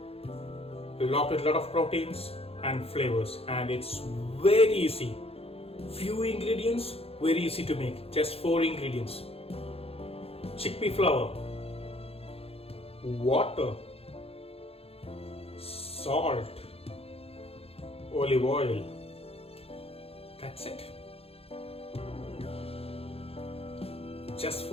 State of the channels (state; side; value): late; right; 0.28 ms